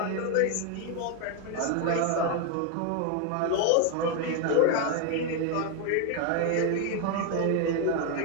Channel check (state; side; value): different; both; correlation 0.01